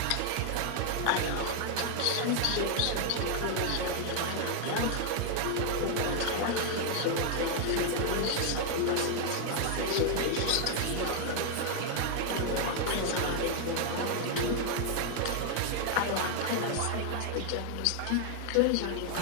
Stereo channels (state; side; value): different; both; correlation 0.00